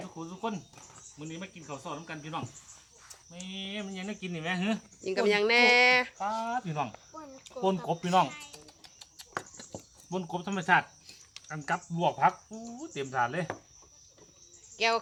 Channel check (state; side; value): identical; both; correlation 1.00